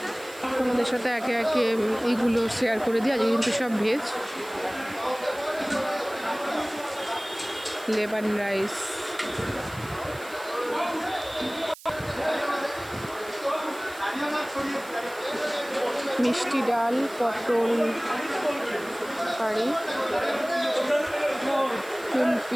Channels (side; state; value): right; noise; hiss, 19 dB below the sound